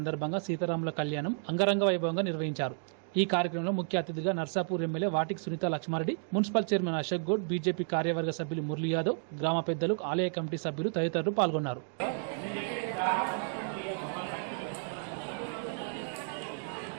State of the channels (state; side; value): silent; left; 56 dB below the other